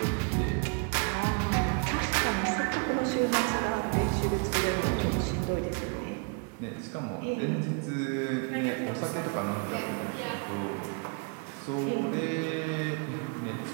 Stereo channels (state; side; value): quieter; left; 35.3 dB